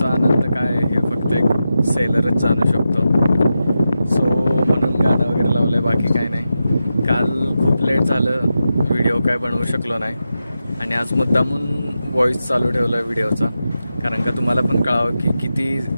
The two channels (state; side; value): inverted; both; correlation -0.90